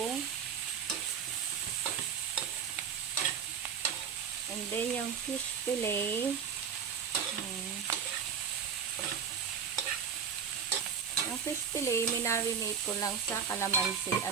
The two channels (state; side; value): quieter; left; 7.0 dB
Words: And then, yung fish fillet. Yung fish fillet, minarinate ko lang sa kalamansi,